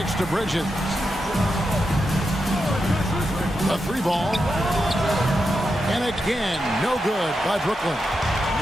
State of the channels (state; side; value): normal; both; correlation 0.87